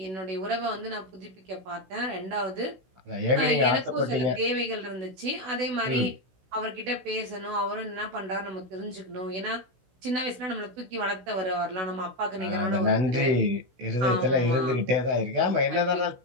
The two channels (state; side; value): late; left; 16 ms